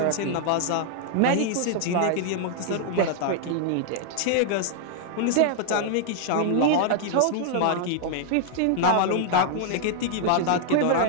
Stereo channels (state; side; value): different; both; correlation 0.00